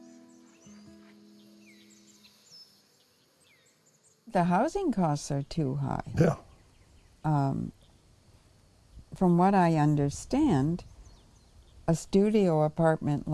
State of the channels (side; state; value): both; identical; correlation 1.00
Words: The housing costs are too high. Yeah. From what I understand, a studio apartment